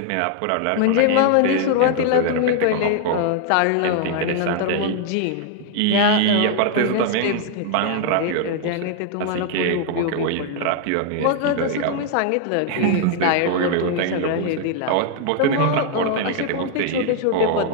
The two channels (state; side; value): different; both; correlation 0.00